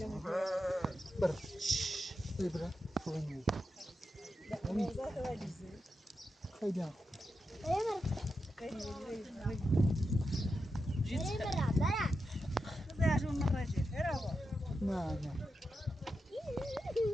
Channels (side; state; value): both; normal; correlation 0.88